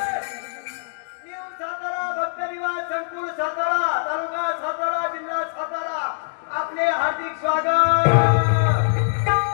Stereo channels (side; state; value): right; silent; digital silence